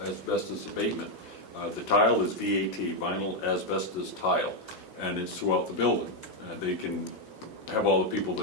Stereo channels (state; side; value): normal; both; correlation 0.02